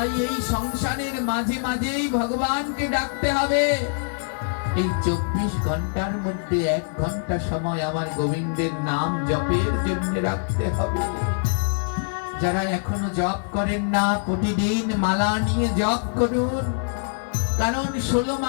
এই সংসারের মাঝে মাঝেই ভগবানকে ডাকতে হবে। এই 24 ঘন্টার মধ্যে 1 ঘন্টা সময় আমার গোবিন্দের নাম জপের জন্য রাখতে হবে। যারা এখনো জপ করেন না, প্রতিদিন মালা নিয়ে জপ করুন। কারণ 16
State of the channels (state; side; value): silent; right; digital silence